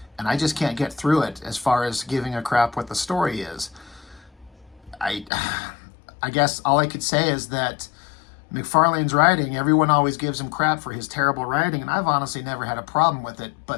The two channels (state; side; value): drops out; right; at 5.3 s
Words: and I just can't get through it as far as giving a crap what the story is. I guess all I could say is that McFarlane's writing, everyone always gives him crap for his terrible writing, and I've honestly never had a problem with it,